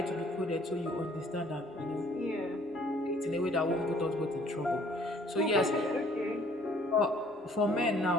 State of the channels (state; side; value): normal; both; correlation 0.58